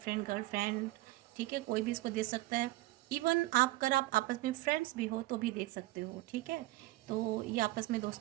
girlfriend, ठीक है, कोई भी इसको देख सकता है। इवन आप अगर आप आपस में फ्रेंड्स भी हो तो भी देख सकते हो, ठीक है। तो ये आपस में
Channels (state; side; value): quieter; left; 18.1 dB